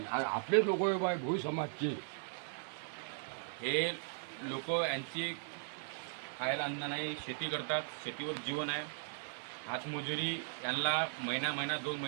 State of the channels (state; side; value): silent; left; 52 dB below the other